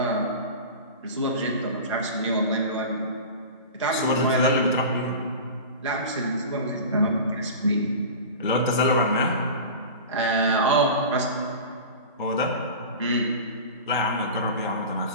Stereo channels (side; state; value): both; inverted; correlation -0.33